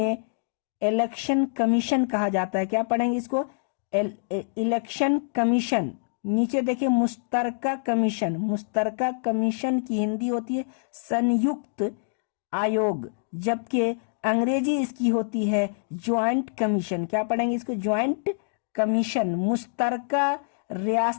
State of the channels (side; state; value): right; silent; digital silence